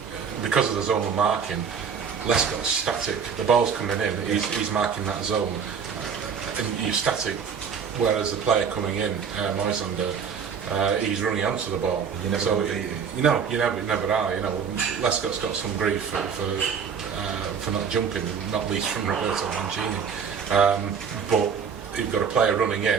because of the zonal marking, Lescott's static. The ball's coming in, he's marking that zone, and you're static. Whereas the player coming in, Moisander, he's running onto the ball. You never you never are. Lescott's got some grief for not jumping, not least from Roberto Mancini. But you've got a player running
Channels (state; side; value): quieter; left; 6.6 dB